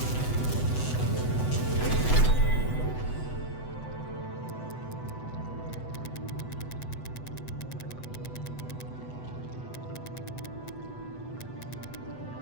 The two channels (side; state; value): right; late; 8.0 ms